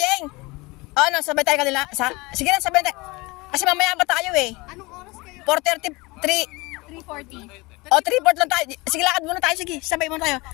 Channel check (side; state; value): right; quieter; 23.9 dB